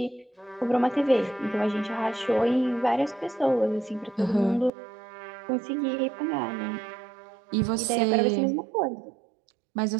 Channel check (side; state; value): left; drops out; at 4.7 s